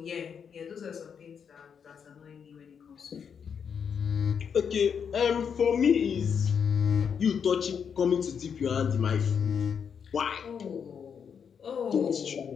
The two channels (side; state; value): right; quieter; 7.1 dB